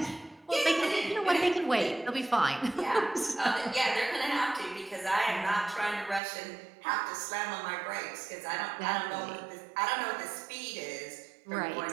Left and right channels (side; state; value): left; drops out; at 6.2 s